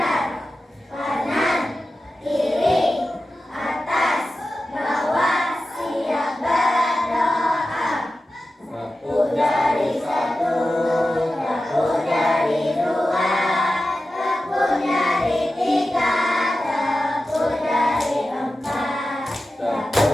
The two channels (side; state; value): both; normal; correlation 0.93